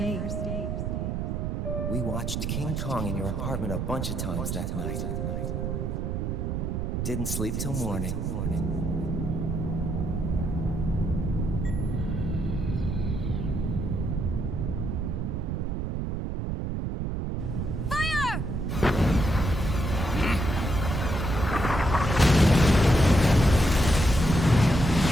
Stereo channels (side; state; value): right; noise; rumble, 1 dB below the sound